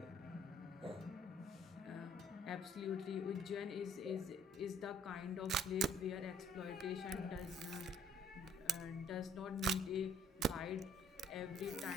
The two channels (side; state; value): both; normal; correlation 0.60